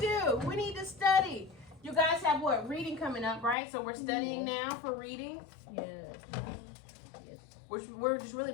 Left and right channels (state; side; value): drops out; right; at 3.6 s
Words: we need to study. You guys have what? Reading coming up, right? So we're studying now for reading. Yes. We're just really